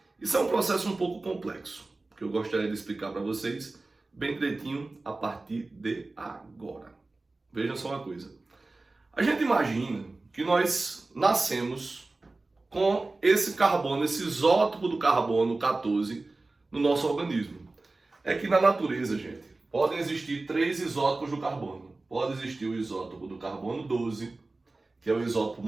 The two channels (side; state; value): left; quieter; 3.2 dB